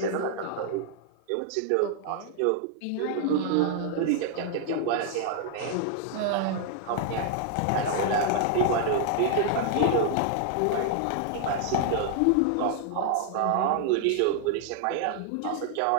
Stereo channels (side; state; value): both; different; correlation 0.00